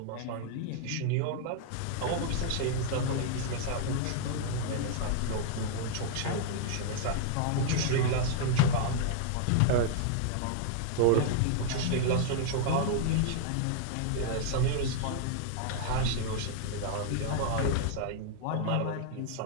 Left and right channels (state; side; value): different; both; correlation -0.01